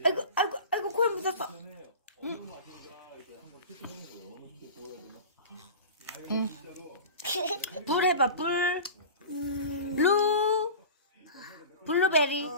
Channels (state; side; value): inverted; both; correlation -0.34